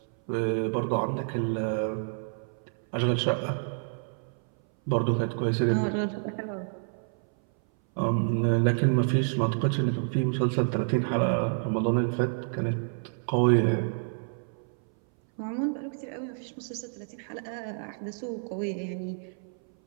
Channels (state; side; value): silent; left; 59 dB below the other